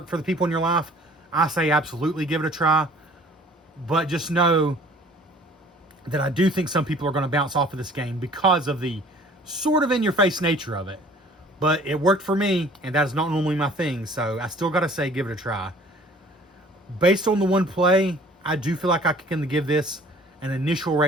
for the people in your life, I say absolutely give it a try. But just know that I do think some people are going to bounce off of this game because of the sort of in-your-face nature of it. But it worked for me, and that is not normally my thing, so I still got to say give it a try. Based on the one play, I do feel like I can give this an initial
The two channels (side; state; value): both; normal; correlation 0.52